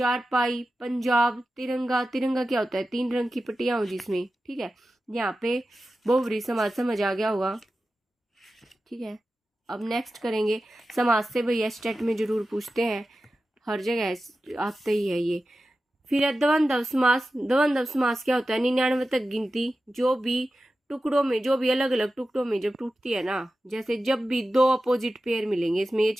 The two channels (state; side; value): normal; both; correlation 0.93